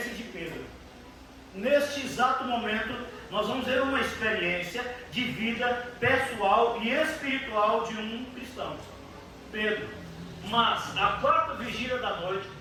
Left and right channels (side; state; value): both; identical; correlation 1.00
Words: de Pedro. Neste exato momento, nós vamos ver uma experiência de vida pessoal e espiritual de um cristão. Pedro. Mas, à quarta vigília da noite,